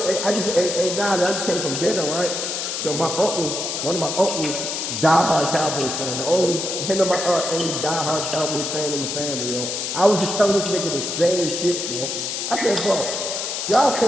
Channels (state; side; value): noise; left; hiss, 3 dB below the sound